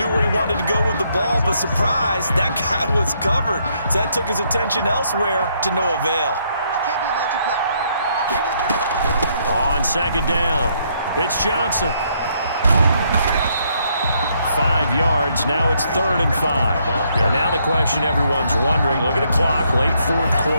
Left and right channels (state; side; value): inverted; both; correlation -0.72